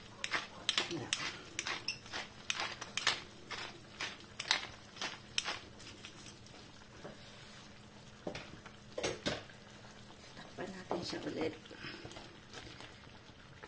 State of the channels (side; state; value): both; identical; correlation 1.00